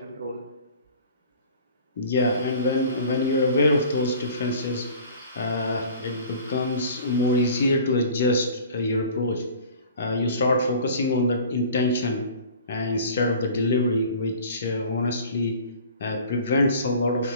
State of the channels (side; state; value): both; inverted; correlation -0.45